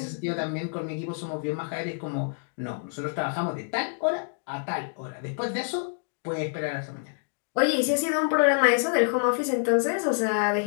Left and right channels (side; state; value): right; silent; digital silence